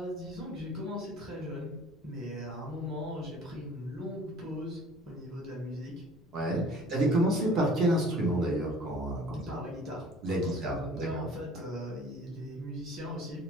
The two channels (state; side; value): noise; left; rumble, 26 dB below the sound